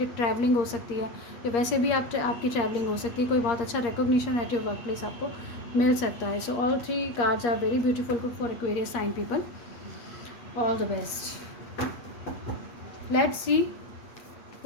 ट्रैवलिंग हो सकती है, या वैसे भी आपकी ट्रैवलिंग हो सकती है। कोई बहुत अच्छा recognition at your workplace आपको मिल सकता है। So all 3 cards are very beautiful for Aquarius sign people. All the best. Let's see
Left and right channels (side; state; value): right; late; 8.5 ms